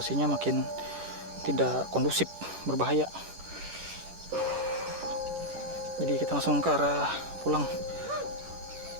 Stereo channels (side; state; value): left; late; 10 ms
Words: makin tidak kondusif, berbahaya. Jadi kita langsung ke arah pulang.